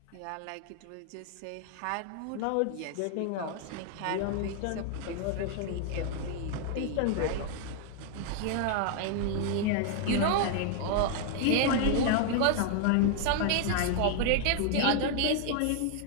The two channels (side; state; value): both; different; correlation 0.00